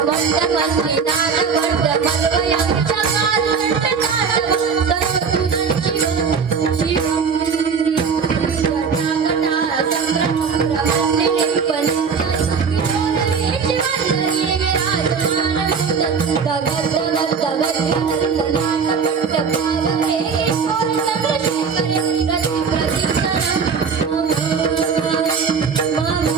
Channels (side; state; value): left; quieter; 5.9 dB